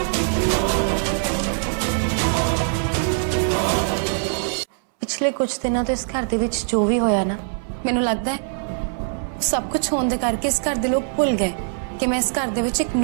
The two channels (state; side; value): silent; left; 64 dB below the other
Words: पिछले कुछ दिनों तो इस घर दे विच जो भी होया ना, मैनू लगता है सब कुछ होने दे करके इस घर दे लोग भुल गए कि मैं इस घर दे विच एक